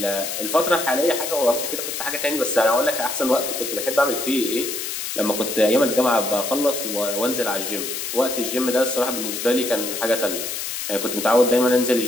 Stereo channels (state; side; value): noise; left; hiss, 5 dB below the sound